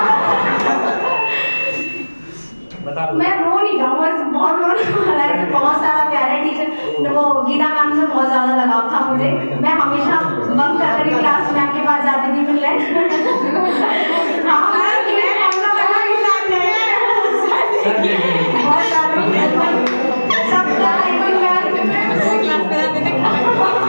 मैं रो नहीं जाऊँ, बस बहुत रोने, बहुत सारा प्यारे टीचर, वो गीता मैम से बहुत ज़्यादा लगाव था मुझे। मैं हमेशा बंक करके क्लास मैम के पास जाती थी मिलने।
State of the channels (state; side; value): inverted; both; correlation -1.00